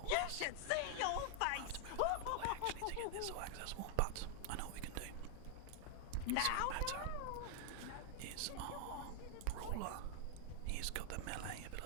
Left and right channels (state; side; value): different; both; correlation 0.00